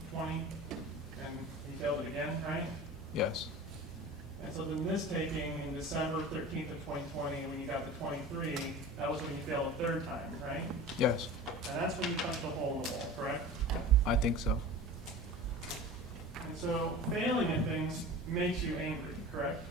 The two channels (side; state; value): both; normal; correlation 0.36